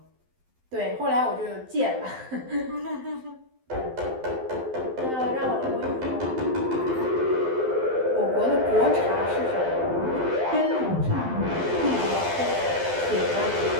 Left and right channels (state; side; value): late; left; 12 ms